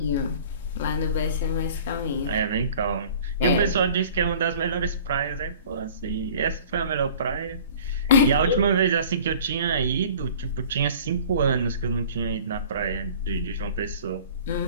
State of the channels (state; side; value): inverted; both; correlation -0.46